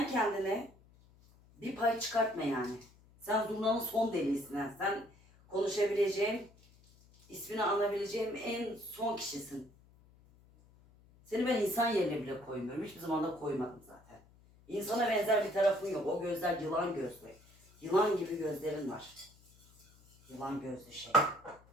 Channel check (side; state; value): left; noise; hum, 27 dB below the sound